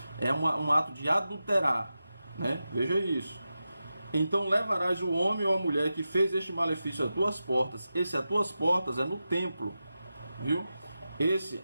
é um ato de adulterar, né? Veja isso. Então levarás o homem ou a mulher que fez este malefício a tuas portas. Esse a tuas portas é no templo, viu? Esse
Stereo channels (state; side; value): inverted; both; correlation -0.92